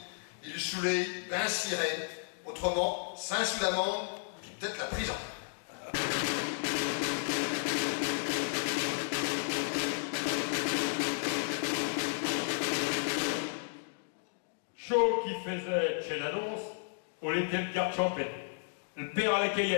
il soulève bien ciré, autrement, Saint-Soudamment, puis peut-être la prison. Chaud qui faisait chez l'annonce, on était le carte champêtre, le père à la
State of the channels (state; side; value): silent; right; digital silence